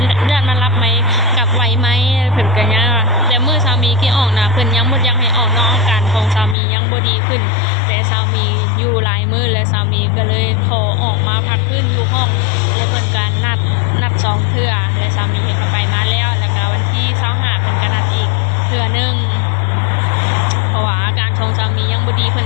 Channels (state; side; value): drops out; right; at 6.6 s